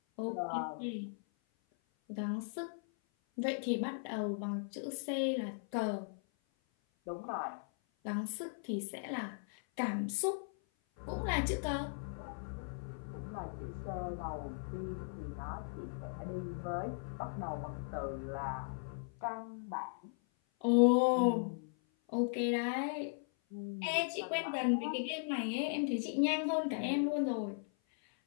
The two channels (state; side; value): silent; right; 53 dB below the other